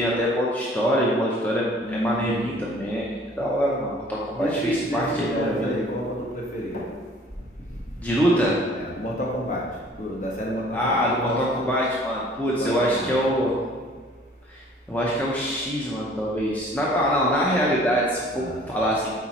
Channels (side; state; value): both; normal; correlation 0.53